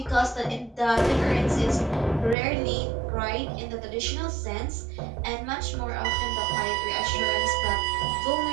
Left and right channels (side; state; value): left; drops out; at 2.4 s